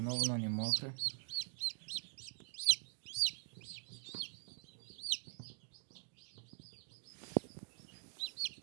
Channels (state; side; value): silent; left; digital silence